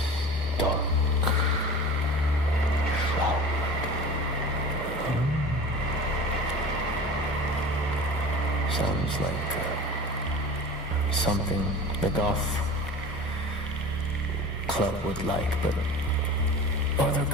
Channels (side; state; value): both; normal; correlation 0.37